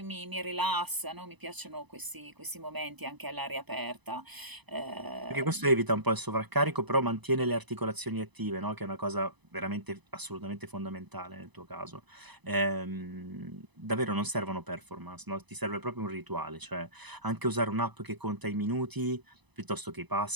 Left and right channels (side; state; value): left; late; 1.0 ms